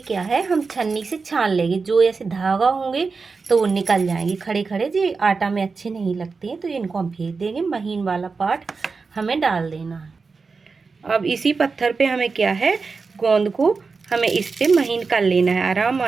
है, हम छन्नी से छान लेंगे। जो ऐसे धागा होंगे तो वो निकल जाएंगे, खड़े खड़े जो आटा में अच्छे नहीं लगते हैं, तो इनको हम फेंक देंगे। महीन वाला पार्ट हमें डाल देना है। अब इसी पत्थर पे हमें क्या है, गोंद को हमें इस पे महीन कर लेना है आराम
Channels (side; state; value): left; quieter; 4.6 dB